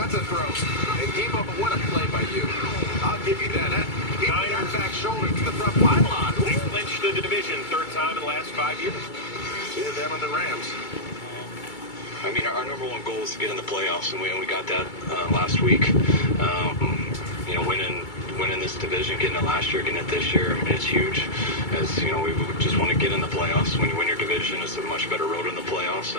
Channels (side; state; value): right; late; 2.3 ms